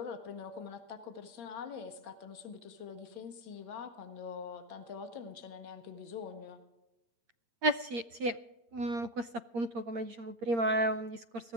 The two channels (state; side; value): late; left; 8.7 ms